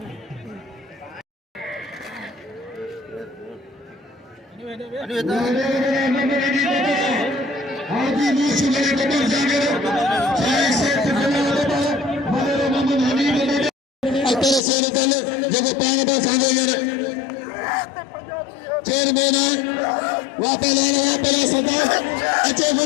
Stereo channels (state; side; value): drops out; right; at 14.6 s